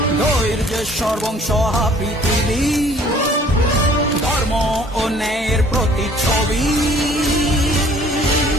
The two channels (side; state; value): both; normal; correlation 0.55